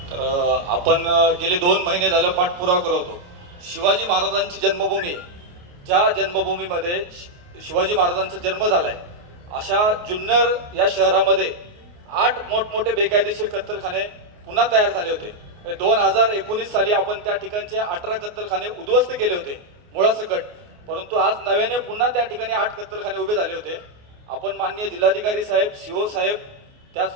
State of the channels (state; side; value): late; left; 28 ms